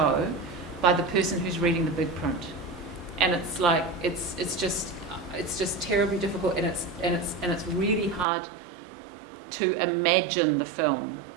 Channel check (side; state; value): left; drops out; at 8.2 s